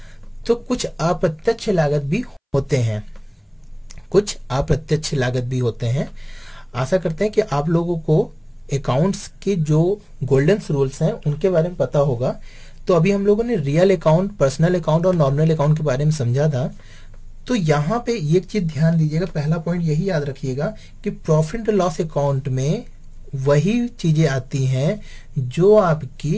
तो कुछ अप्रत्यक्ष लागत भी होते हैं, आशा करते हैं कि आप लोगों को अकाउंट्स के जो गोल्डन रूल्स हैं उनके बारे में पता होगा। तो अभी हम लोगों ने रियल अकाउंट, पर्सनल अकाउंट और नॉमिनल अकाउंट के बारे में समझा था। तो यहाँ पे एक चीज ध्यान दीजिएगा, पहला पॉइंट यही याद रखिएगा कि प्रॉफिट एंड लॉस अकाउंट में वही चीजें आती हैं जो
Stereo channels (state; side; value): identical; both; correlation 1.00